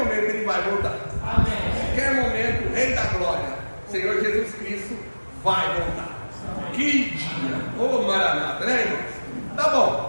Ele vai voltar. Amém. A qualquer momento vai voltar. Que dia! Ô Maranata, né, irmãos? Tá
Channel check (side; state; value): both; inverted; correlation -1.00